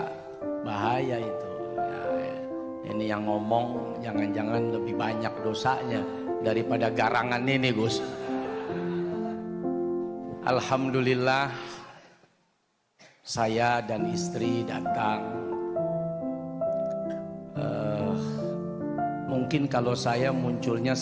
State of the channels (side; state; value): both; identical; correlation 1.00